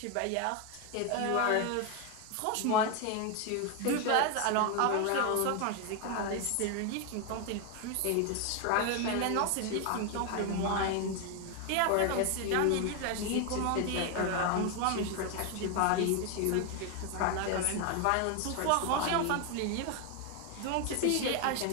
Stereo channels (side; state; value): both; different; correlation 0.01